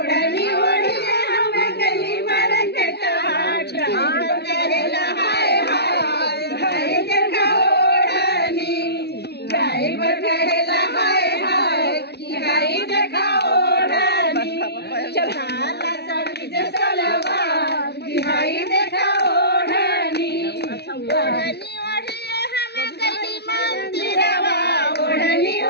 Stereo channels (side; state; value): right; late; 0.48 ms